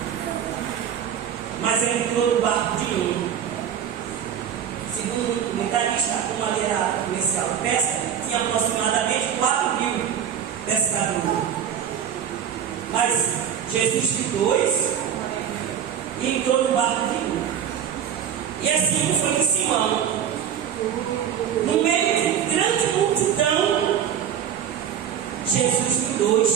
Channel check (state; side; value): quieter; left; 8.9 dB